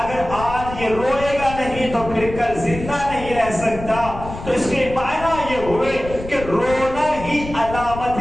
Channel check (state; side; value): noise; left; rumble, 11 dB below the sound